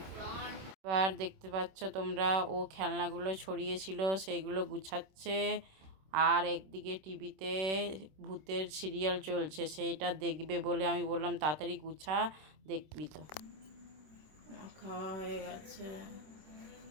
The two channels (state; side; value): late; left; 26 ms